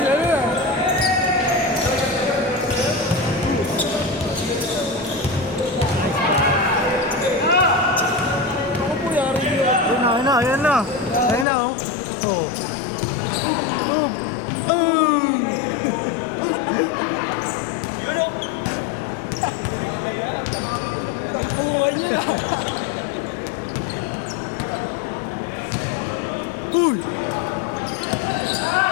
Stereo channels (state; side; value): drops out; right; at 11.5 s